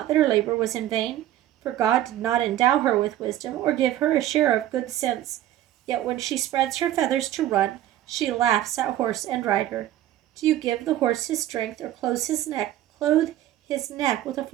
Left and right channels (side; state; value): left; quieter; 13.0 dB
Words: that her labor was in vain, for God did not endow her with wisdom or give her a share of good sense. Yet when she spreads her feathers to run, she laughs at horse and rider. Do you give the horse his strength, or clothe his neck with a